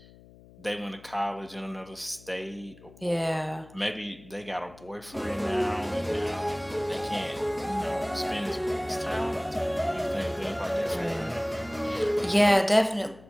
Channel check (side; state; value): left; noise; hum, 22 dB below the sound